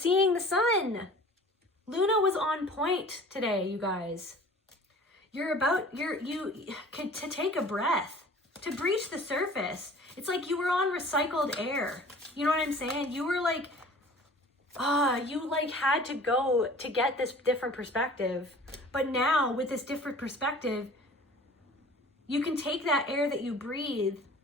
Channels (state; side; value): normal; both; correlation 0.46